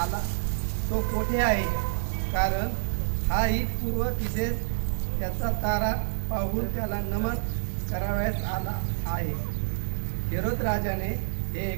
तो कोठे आहे, कारण हाही पूर्व तिथेच त्याचा तारा पाहून त्याला नमन करावयास आला आहे. हेरोद राजाने हे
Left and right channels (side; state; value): left; silent; 59 dB below the other